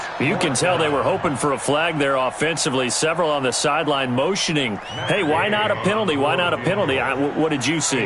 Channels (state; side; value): identical; both; correlation 1.00